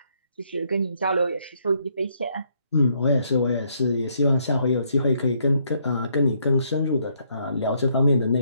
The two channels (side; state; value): both; inverted; correlation -0.72